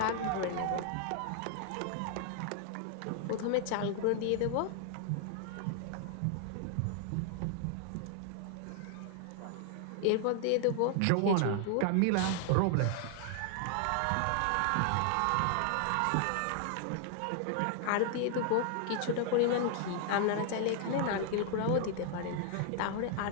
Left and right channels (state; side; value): different; both; correlation 0.00